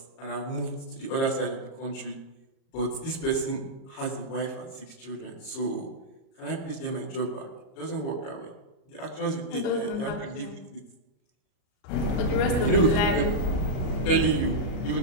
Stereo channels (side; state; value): right; late; 37 ms